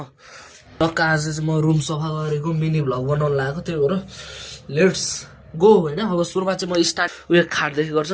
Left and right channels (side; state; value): both; identical; correlation 1.00